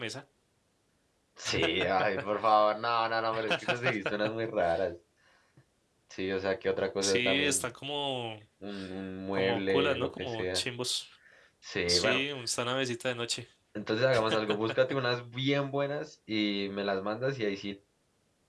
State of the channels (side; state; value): both; identical; correlation 1.00